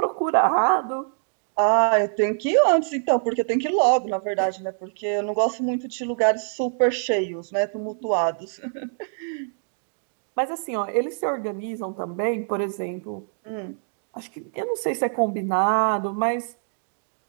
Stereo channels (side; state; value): left; silent; digital silence